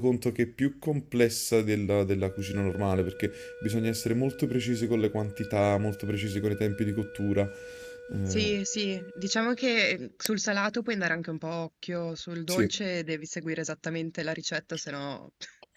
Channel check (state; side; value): identical; both; correlation 1.00